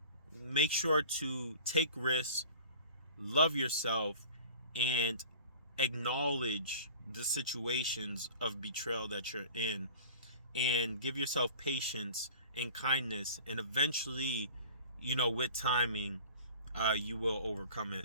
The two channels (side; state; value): both; inverted; correlation -0.43